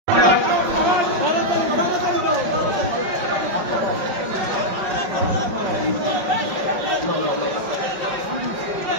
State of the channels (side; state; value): left; late; 5.3 ms